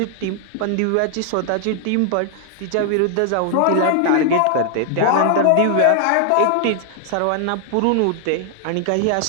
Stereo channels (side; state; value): both; different; correlation 0.00